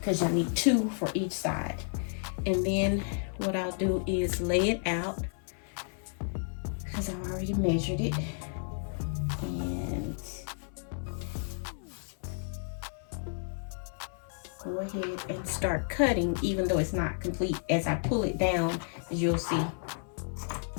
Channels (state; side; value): silent; right; 56 dB below the other